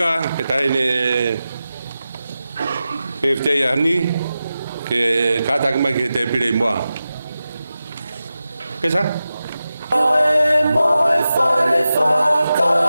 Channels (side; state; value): both; inverted; correlation -0.93